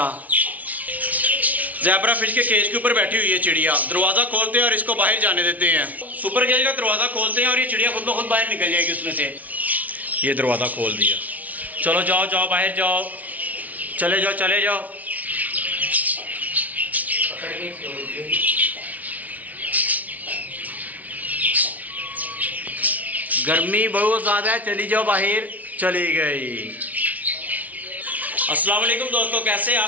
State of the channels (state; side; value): late; left; 0.073 ms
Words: ज़ेब्रा फिश के केज के ऊपर बैठी हुई है चिड़िया। दरवाज़ा खोलते हैं और इसको बाहर जाने देते हैं। सुपर केज का दरवाज़ा खोलते हैं और ये चिड़िया खुद ब खुद बाहर निकल जाएगी उसमें से। ये दरवाज़ा खोल दिया। चलो जाओ जाओ बाहर जाओ, चले जाओ चले जाओ। गर्मी बहुत ज़्यादा है, चली जाओ बाहर। चली गई। अस्सलाम वालेकुम दोस्तों, कैसे